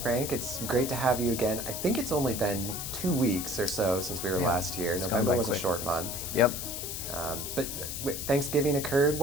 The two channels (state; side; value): noise; left; hiss, 5 dB below the sound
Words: It's great to have you again. I think it's only been 2 weeks or so since we were last here. November was a short month. Yep. But Thanksgiving occurred.